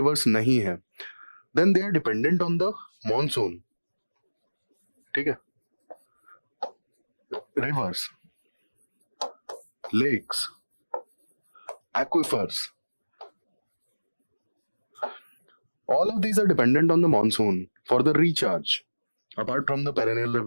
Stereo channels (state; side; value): inverted; both; correlation -1.00